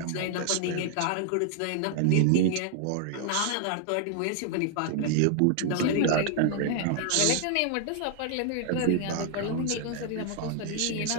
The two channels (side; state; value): both; different; correlation -0.01